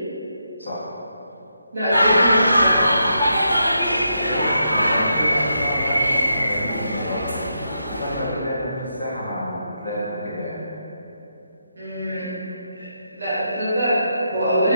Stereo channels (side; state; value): both; inverted; correlation -0.82